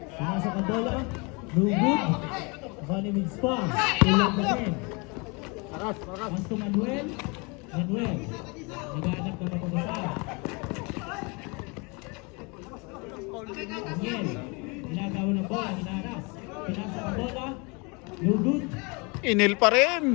Pinasok ang bola. No good. Bali with spar. Tulog na din. Pass to Manuel. Manuel. Naghanap na mapapasara. Daniel. Ginagawa ng bola. Hinaras. Pinasok ang bola. No good. Inil pa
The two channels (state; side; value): quieter; right; 29.7 dB